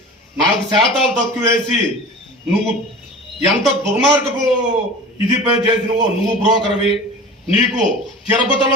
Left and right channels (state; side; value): normal; both; correlation 0.36